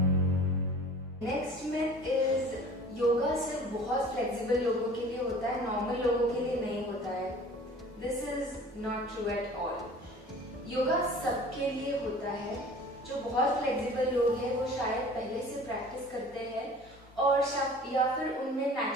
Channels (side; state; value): both; normal; correlation 0.45